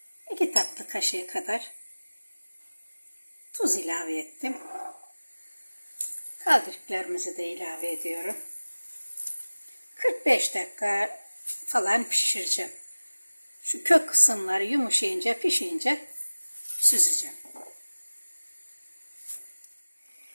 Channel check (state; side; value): inverted; both; correlation -1.00